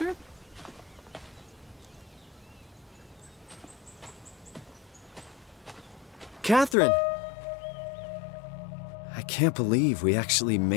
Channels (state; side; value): drops out; right; at 6.8 s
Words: Catherine! I can't believe we actually